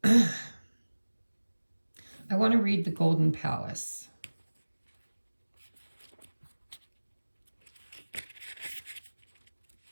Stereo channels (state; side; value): inverted; both; correlation -1.00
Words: I want to read the Golden Palace.